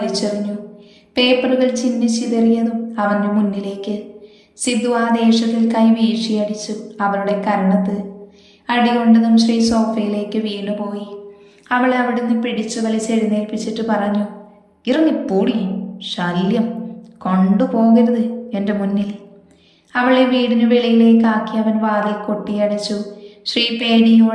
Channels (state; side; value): identical; both; correlation 1.00